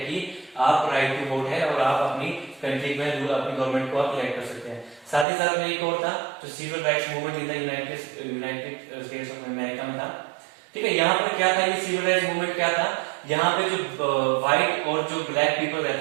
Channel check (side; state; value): left; drops out; at 5.2 s